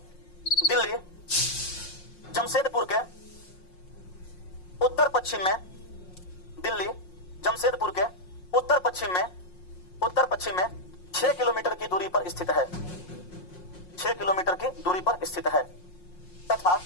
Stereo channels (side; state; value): right; late; 5.6 ms